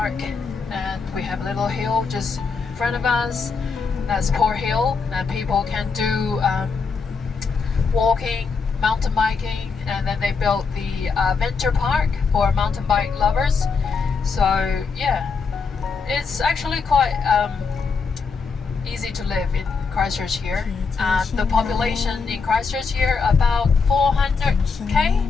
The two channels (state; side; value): quieter; right; 5.0 dB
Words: And we have a little hill just in front of us. That's Port Hill, and people can do walking, mountain biking, and then they built the venture park for mountain bike lovers. So yeah, it's actually quite easy to live in Christchurch here. The population in Christchurch here about 400k.